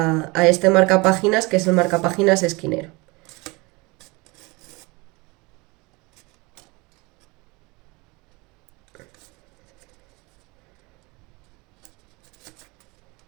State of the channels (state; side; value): quieter; left; 25.5 dB